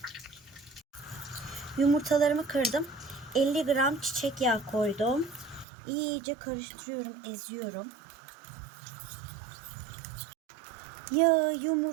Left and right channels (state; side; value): drops out; left; at 5.7 s